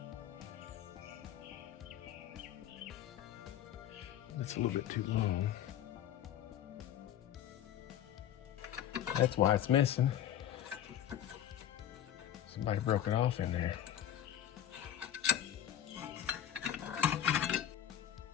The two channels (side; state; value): right; quieter; 10.7 dB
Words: That's a little bit too long. That's why it's missing. Somebody broke it off in there.